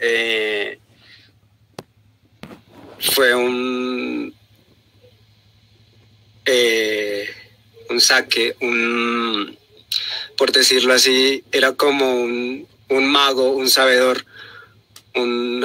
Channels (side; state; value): both; identical; correlation 1.00